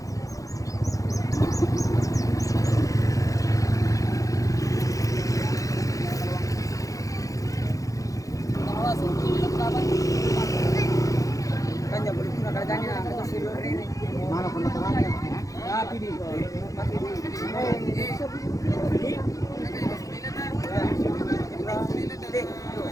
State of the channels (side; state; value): right; late; 0.16 ms